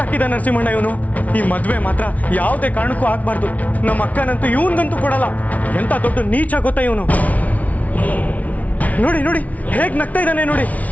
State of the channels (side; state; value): right; late; 0.070 ms